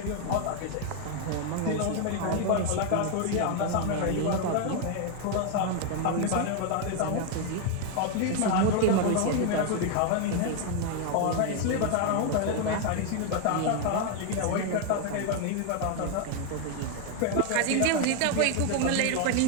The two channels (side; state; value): both; different; correlation 0.01